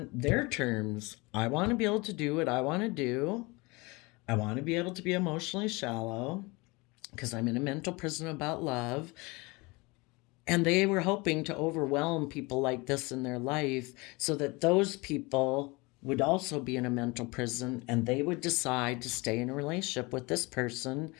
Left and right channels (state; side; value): quieter; right; 25.3 dB